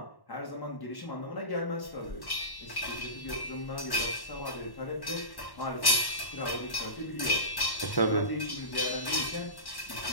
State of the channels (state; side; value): late; right; 1.1 ms